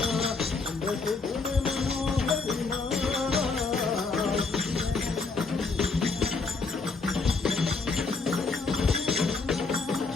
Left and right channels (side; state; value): right; quieter; 4.2 dB